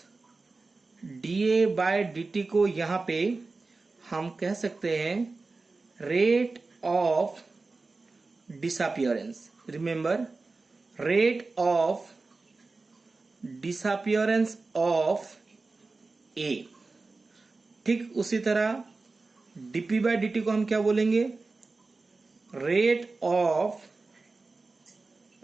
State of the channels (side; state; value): left; quieter; 3.7 dB